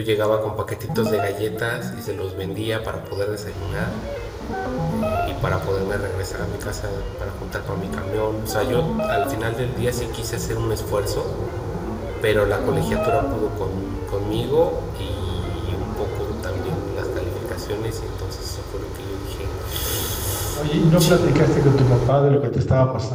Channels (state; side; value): identical; both; correlation 1.00